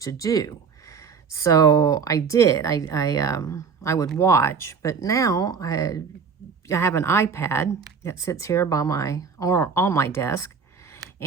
to do. So I did. I would watch, but now I have an iPad that sits here by on my desk,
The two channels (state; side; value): quieter; left; 5.9 dB